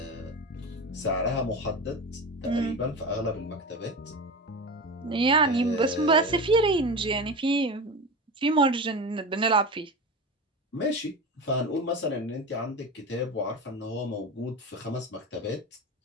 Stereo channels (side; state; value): both; normal; correlation 0.26